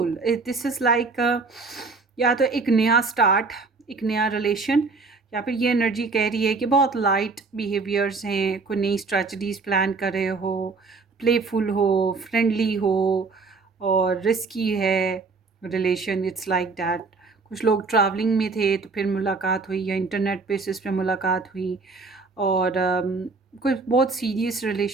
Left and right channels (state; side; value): quieter; left; 4.1 dB